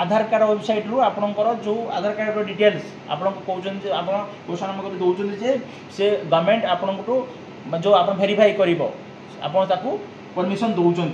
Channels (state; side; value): identical; both; correlation 1.00